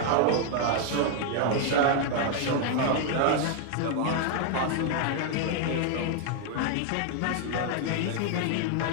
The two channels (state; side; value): different; both; correlation 0.00